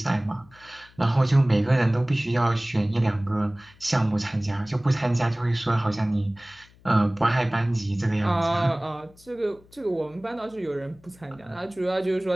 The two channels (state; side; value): noise; left; hum, 27 dB below the sound